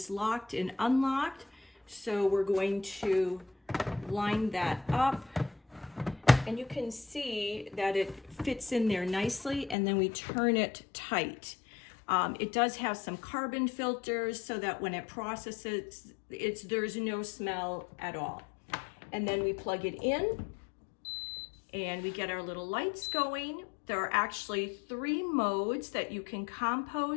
locked and unlocked. So we're going to line that up. And you can see that it fits in there nicely, and then we turn it tight. It does have some carbon filters so that when it processes, there's no smell at all. And then we plug it in and we get our little lights going. There are actually 3 modes that you can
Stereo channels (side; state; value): right; drops out; at 9.8 s